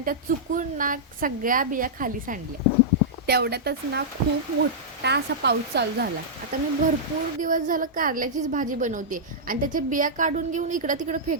त्या चुकून ना सगळ्या बिया खाली सांडल्या। तेवढ्यातच ना खूप मोठा असा पाऊस चालू झाला। आता मी भरपूर दिवस झालं कारल्याचीच भाजी बनवते आणि त्याचे बिया काढून घेऊन इकडं तिकडं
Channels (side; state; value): both; normal; correlation -0.11